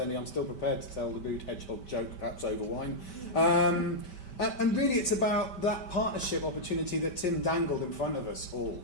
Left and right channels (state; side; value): late; right; 5.2 ms